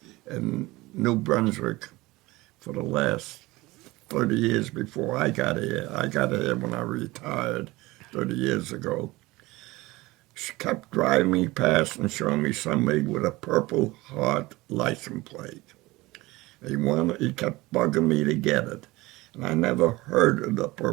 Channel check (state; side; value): quieter; left; 20.5 dB